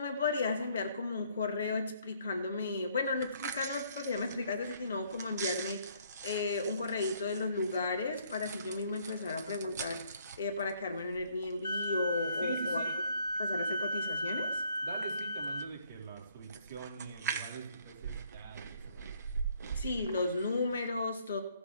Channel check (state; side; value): inverted; both; correlation -0.65